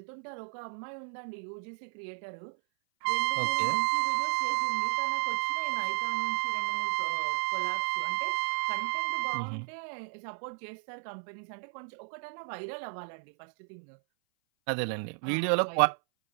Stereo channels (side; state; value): left; silent; 56 dB below the other